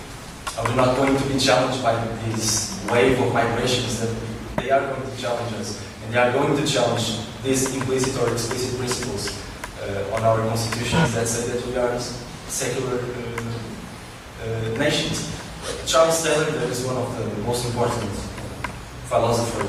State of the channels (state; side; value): identical; both; correlation 1.00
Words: Are we not going to be challenged by this wave of migrations that they are going to challenge us, and they are going to challenge these implicit or explicit principles on our constitutions that say that we are secular nations? Charles Taylor, that is one of the most important